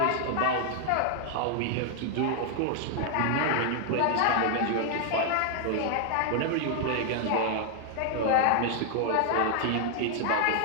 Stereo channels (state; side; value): different; both; correlation 0.00